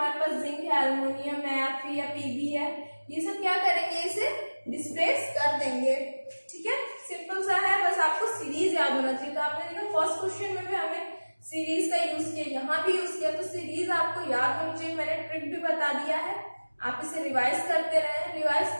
पास जिंक है, एल्युमिनियम है, Fe या Pb है, ये सब क्या करेंगे, इसे डिस्प्लेस कर देंगे। ठीक है, सिंपल सा है, बस आपको सीरीज याद होना चाहिए। तो आपने देखा फर्स्ट क्वेश्चन में भी हमें सीरीज का यूज किया, यहाँ भी यूज किया, तो सीरीज आपको याद होनी चाहिए। मैंने ट्रिक भी बता दिया है, आप इसे रिवाइज करते रहे। रिवाइज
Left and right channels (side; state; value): both; inverted; correlation -1.00